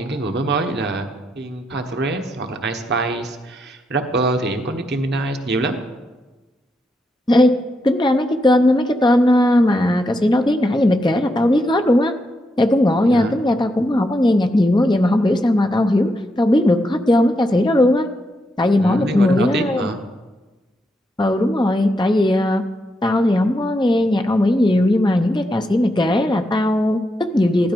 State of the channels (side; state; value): both; normal; correlation 0.82